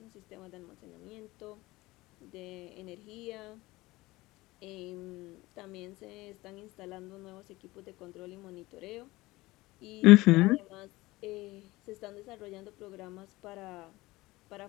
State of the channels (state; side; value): quieter; right; 19.9 dB